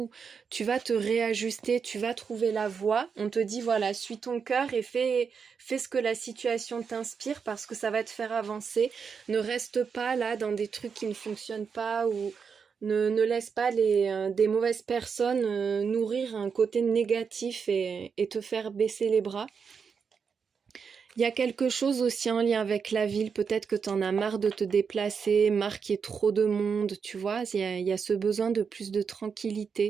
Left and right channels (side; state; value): left; quieter; 6.1 dB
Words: tu vas te réajuster, tu vas trouver la voie. On te dit voilà, suis ton cœur et fais ce que la situation t'inspire parce que ça va te faire avancer. Ne reste pas là dans des trucs qui ne fonctionnent pas ou ne laisse pas des mauvaises personnes nourrir un côté négatif et te faire baisser les bras. Il y a quelque chose aussi en lien avec la ville, peut-être que tu en as marre de te déplacer, marre qu'il y ait trop de monde, tu vois, il y a ce besoin de plus de